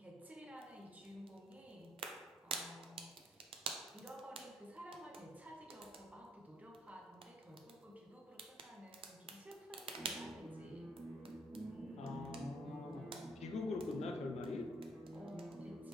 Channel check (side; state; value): both; normal; correlation 0.69